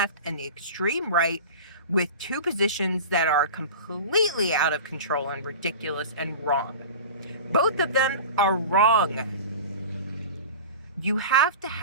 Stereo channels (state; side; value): inverted; both; correlation -0.33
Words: and the extreme right with two positions that are completely out of control and ridiculous and wrong. Both of them are wrong. You have to